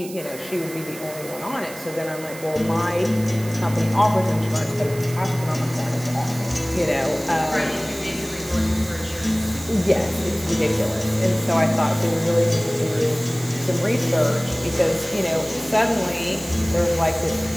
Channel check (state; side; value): noise; right; hiss, 15 dB below the sound